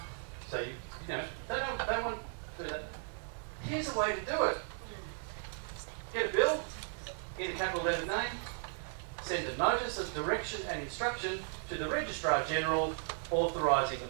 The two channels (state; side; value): silent; left; 54 dB below the other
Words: So you know, they don't want to do that. Here's a way to do it. Get a bill in a capital letter name, send a notice of direction and instruction to the Registrar General authorising the